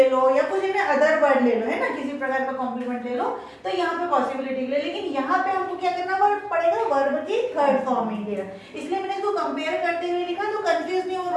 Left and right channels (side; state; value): both; identical; correlation 1.00